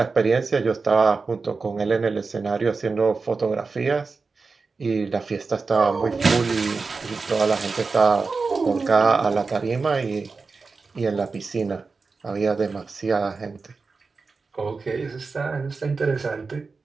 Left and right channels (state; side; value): quieter; left; 4.4 dB